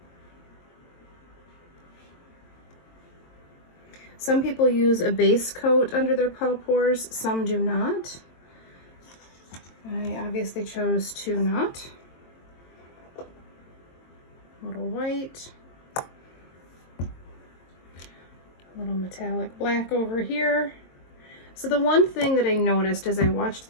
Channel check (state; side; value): late; right; 22 ms